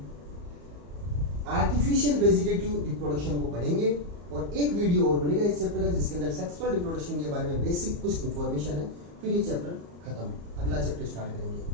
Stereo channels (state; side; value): late; left; 34 ms